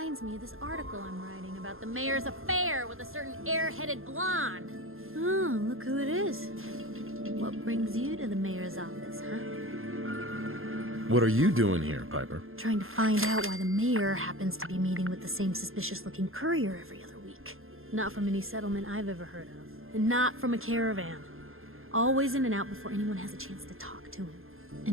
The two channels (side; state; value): left; late; 0.61 ms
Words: me of this article I'm writing about the mayor's affair with a certain air-headed blonde. Oh, look who it is. What brings you to the mayor's office, huh? What are you doing here, Piper? Trying to find out why the mayor happens to be meeting with the same suspicious-looking courier every other week. Not from any settlement I've ever heard of. And not from a caravan. Always in and out before anyone has a chance to talk to him.